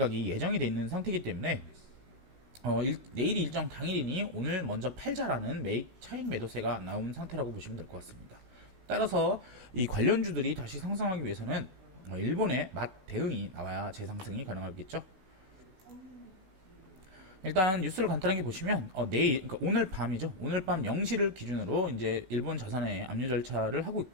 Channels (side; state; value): left; late; 16 ms